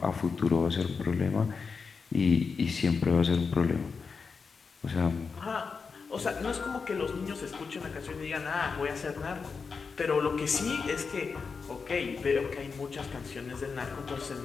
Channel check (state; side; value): quieter; right; 5.2 dB